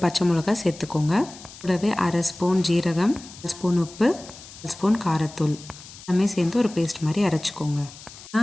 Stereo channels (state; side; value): noise; left; hiss, 17 dB below the sound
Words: பச்சை மிளகாய் சேர்த்துக்கோங்க. கூடவே 1/2 ஸ்பூன் ஜீரகம், 1 ஸ்பூன் உப்பு, 1 ஸ்பூன் காரத்தூள் எல்லாமே சேர்ந்து ஒரு பேஸ்ட் மாதிரி அரைச்சிக்கோங்க.